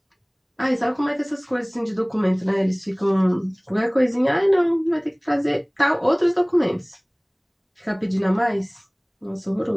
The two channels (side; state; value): both; identical; correlation 1.00